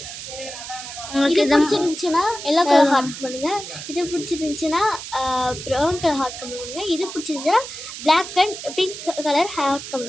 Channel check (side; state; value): right; noise; hiss, 10 dB below the sound